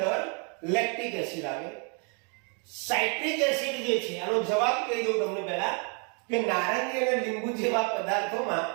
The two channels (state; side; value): quieter; left; 36.8 dB